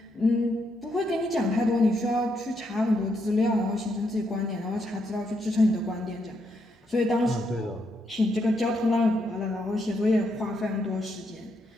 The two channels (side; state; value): both; normal; correlation 0.78